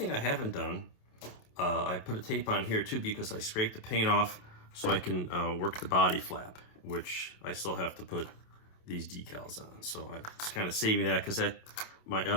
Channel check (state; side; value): late; right; 27 ms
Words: I haven't done, I put a tape on here too because I scraped the paint off so I can work the body flap, which I still have to put these decals on. So I was kind of saving that because my